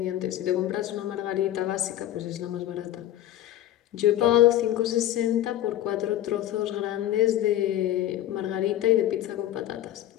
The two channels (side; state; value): right; quieter; 13.0 dB